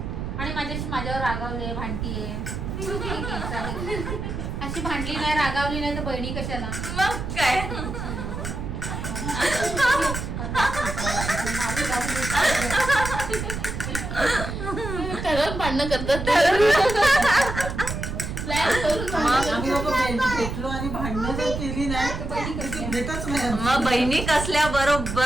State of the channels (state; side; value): noise; right; rumble, 5 dB below the sound